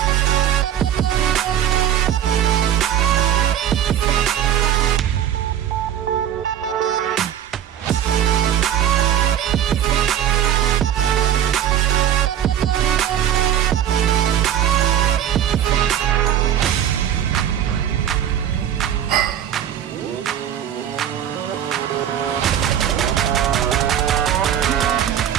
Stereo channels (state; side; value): quieter; left; 10.4 dB